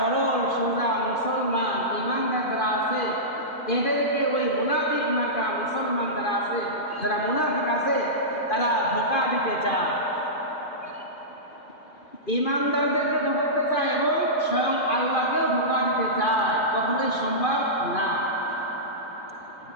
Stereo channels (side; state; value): right; late; 2.5 ms